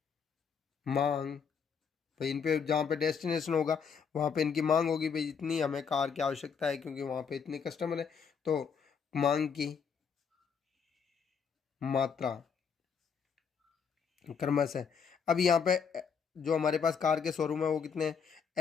मांग, भाई इन पे जहाँ पे डेस्टिनेशन होगा वहाँ पे इनकी मांग होगी, भाई इतनी हमें कार की आवश्यकता है क्योंकि वहाँ पे इतने कस्टमर है, तो मांग की मात्रा क्रमशः, अब यहाँ पे जो हमारे पास कार के शोरूम है वो कितने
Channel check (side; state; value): right; quieter; 6.4 dB